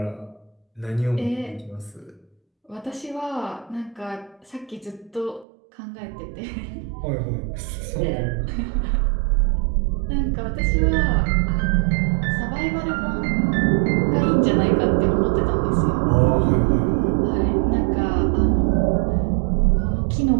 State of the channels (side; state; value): left; drops out; at 5.5 s